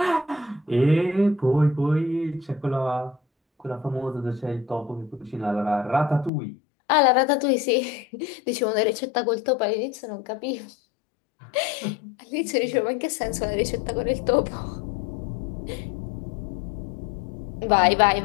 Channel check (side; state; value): right; drops out; at 6.3 s